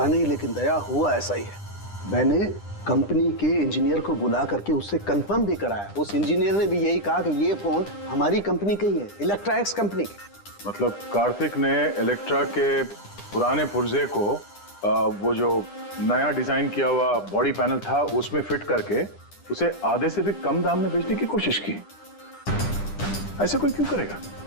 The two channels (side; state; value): right; late; 10 ms